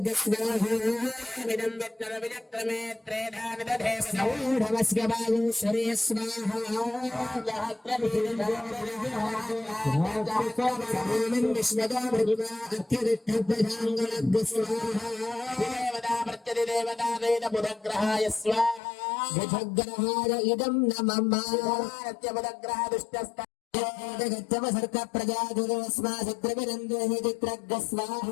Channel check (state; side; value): drops out; right; at 18.8 s